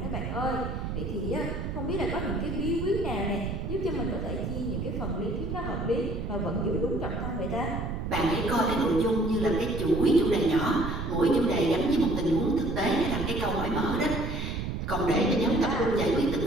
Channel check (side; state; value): right; noise; rumble, 4 dB below the sound